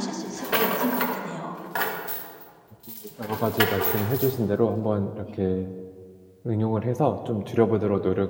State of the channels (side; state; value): both; identical; correlation 1.00